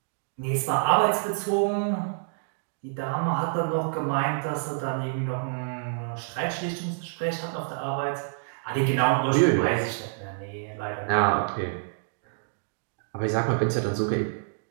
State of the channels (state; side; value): silent; left; digital silence